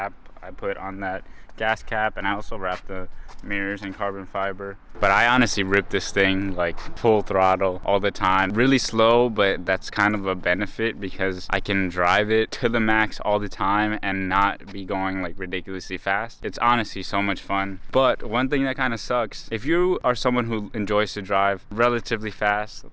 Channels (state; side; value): identical; both; correlation 1.00